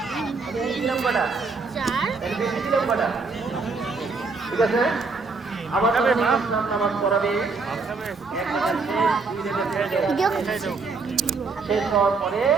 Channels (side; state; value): left; quieter; 4.3 dB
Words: দিলাম কয়টা? বেশি দিলাম কয়টা? ঠিক আছে, আবার নামাজ পড়াবে, শেষ হওয়ার পরে